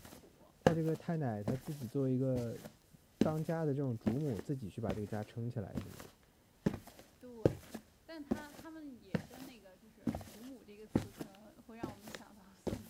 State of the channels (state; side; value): identical; both; correlation 1.00